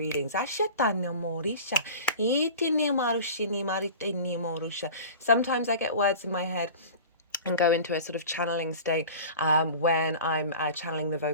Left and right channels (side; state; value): both; inverted; correlation -0.37